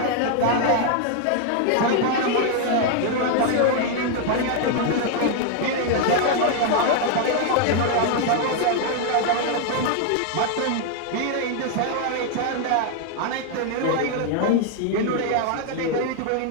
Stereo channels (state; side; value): different; both; correlation 0.00